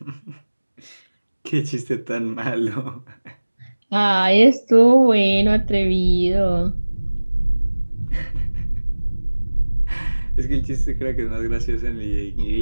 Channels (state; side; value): inverted; both; correlation -1.00